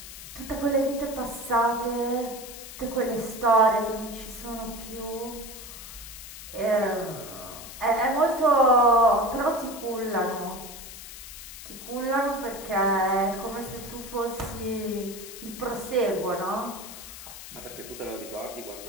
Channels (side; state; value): left; noise; hiss, 13 dB below the sound